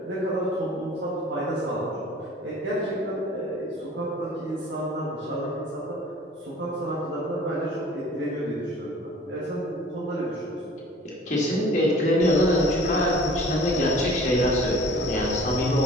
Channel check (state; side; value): normal; both; correlation 0.47